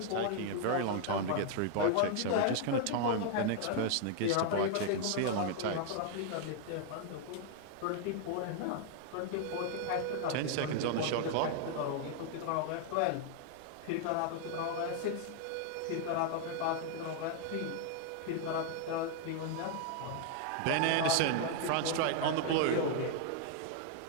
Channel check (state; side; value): different; both; correlation 0.00